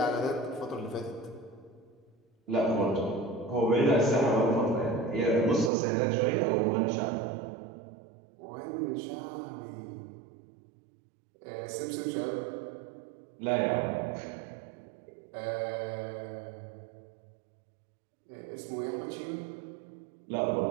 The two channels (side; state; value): left; drops out; at 5.7 s